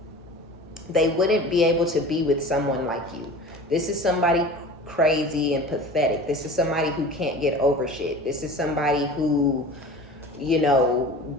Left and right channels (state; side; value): normal; both; correlation 0.39